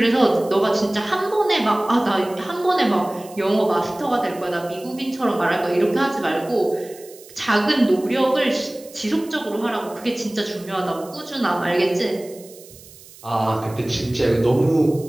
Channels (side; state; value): right; noise; hiss, 21 dB below the sound